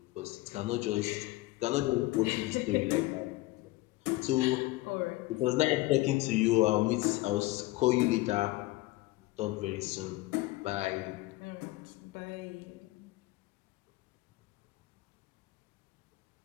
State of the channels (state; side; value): quieter; right; 19.4 dB